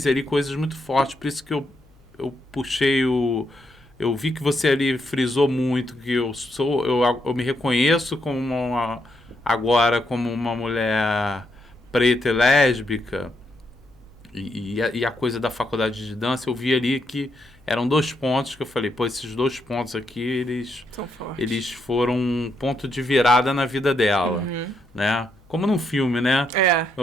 ali coisas muito fortes, por isso que eu puxei o... Eu vi que você ali frisou muito que eu me reconheço agora como uma mulher preta e lésbica, e a coisa da faculdade de dança, eu vi ali que eram 2 pontos que eu falei, pô, esses 2 pontos aqui, eles foram um ponto de virada na vida dela, né? Como num filme, né?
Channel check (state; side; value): noise; left; hum, 30 dB below the sound